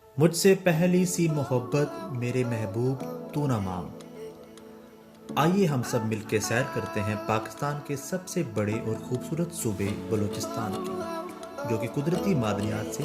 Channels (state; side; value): identical; both; correlation 1.00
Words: मुझसे पहली सी मोहब्बत मेरे महबूब तू ना मांग। आइए हम सब मिलकर सैर करते हैं पाकिस्तान के सबसे बड़े और खूबसूरत सूबे बलूचिस्तान की, जो कि कुदरती मादनियात